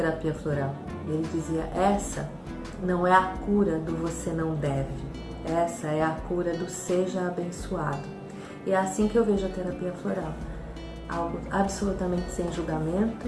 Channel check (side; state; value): both; identical; correlation 1.00